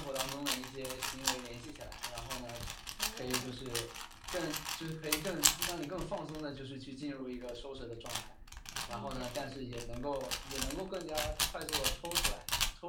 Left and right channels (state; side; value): identical; both; correlation 1.00